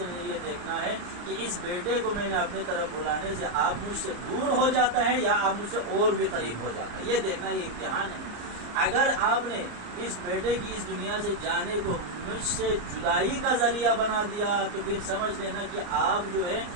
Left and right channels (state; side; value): late; left; 34 ms